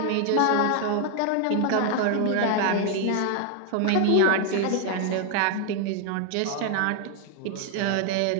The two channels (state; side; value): different; both; correlation 0.00